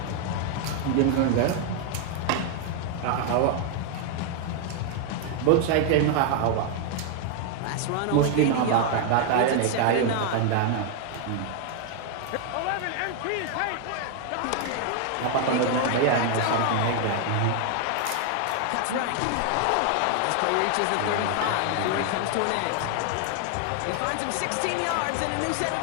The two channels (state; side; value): different; both; correlation 0.00